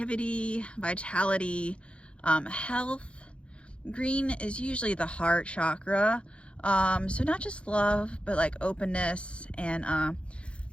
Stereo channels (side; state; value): right; late; 0.059 ms